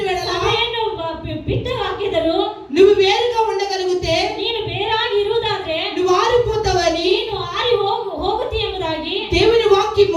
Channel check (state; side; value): identical; both; correlation 1.00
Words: వెడల ಸಭೆಯನ್ನು ಬಿಟ್ಟು ಹಾಕಿದರು, నువ్వు వేరుగా ఉండగలిగితే ನೀನು ಬೇರಾಗಿ ಇರುವುದಾದ್ರೆ నువ్వు ఆరిపోతావని ನೀನು ಆರಿ ಹೋಗುತ್ತಿ ಎಂಬುದಾಗಿ దేవుని